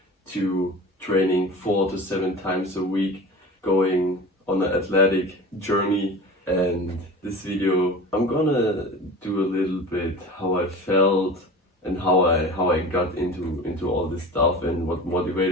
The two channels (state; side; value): normal; both; correlation 0.36